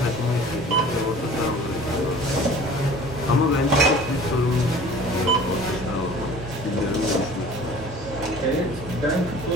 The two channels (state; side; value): normal; both; correlation 0.45